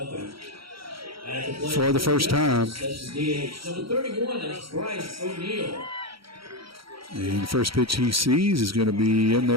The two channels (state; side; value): late; left; 0.75 ms